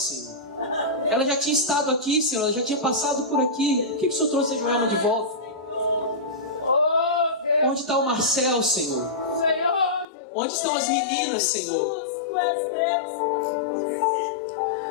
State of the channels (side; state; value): right; drops out; at 10.1 s